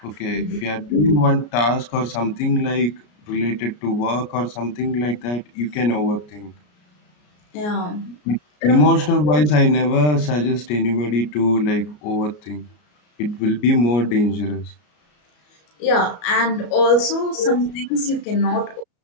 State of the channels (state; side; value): late; right; 33 ms